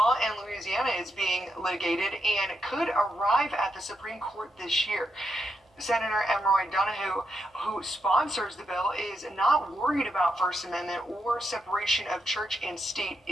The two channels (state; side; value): normal; both; correlation 0.83